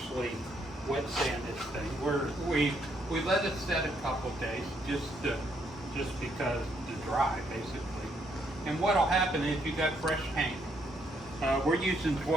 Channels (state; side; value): normal; both; correlation 0.73